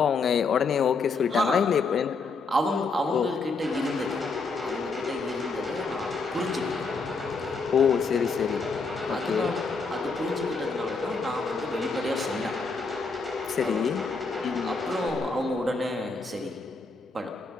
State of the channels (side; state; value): right; quieter; 4.2 dB